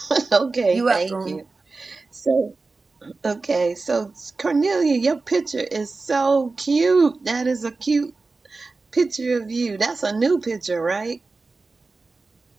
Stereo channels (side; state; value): left; quieter; 3.8 dB